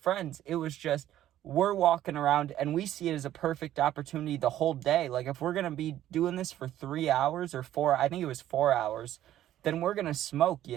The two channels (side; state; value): left; quieter; 12.6 dB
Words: It was just, we're walking around and we see it as a perfect opportunity the whole day. Like, if we're going to be doing this for 3 hours or 4, I think it was 4 hours, then we're going to smoke,